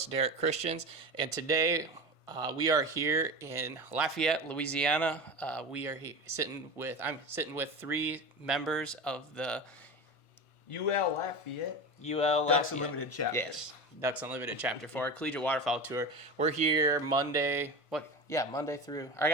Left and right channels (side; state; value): right; late; 1.5 ms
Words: Derek Christians, and today we are here in Lafayette, Louisiana. I'm sitting with three members of the UL Lafayette. Ducks Unlimited chapter. Yes, Ducks Unlimited Chapter 4, Collegiate Waterfowl Tour. We're here Monday through, I